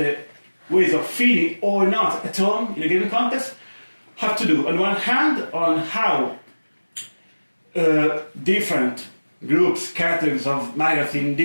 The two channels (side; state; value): both; inverted; correlation -1.00